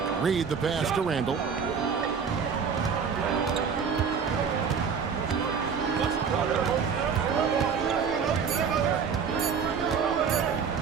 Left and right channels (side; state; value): left; quieter; 6.3 dB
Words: Reed the pass to Randall.